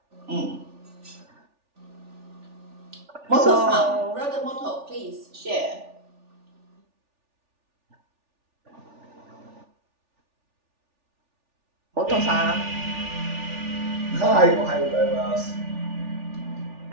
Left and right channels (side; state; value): left; late; 3.4 ms